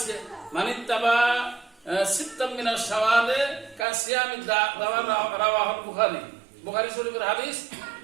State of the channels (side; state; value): left; drops out; at 3.9 s